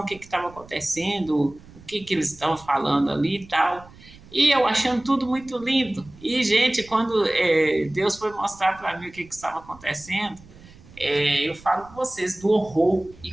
que estava acontecendo, o que eles estavam falando ali e tal. E eu achando tudo muito lindo. E, gente, quando Deus foi mostrar para mim o que estava acontecendo, eu falo com vocês do horror e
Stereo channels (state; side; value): noise; right; rumble, 22 dB below the sound